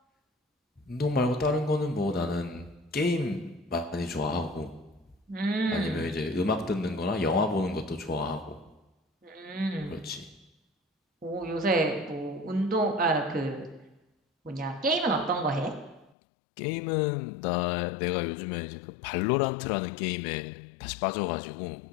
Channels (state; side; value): drops out; right; at 16.1 s